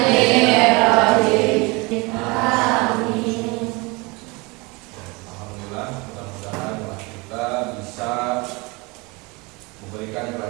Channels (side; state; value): left; quieter; 26.4 dB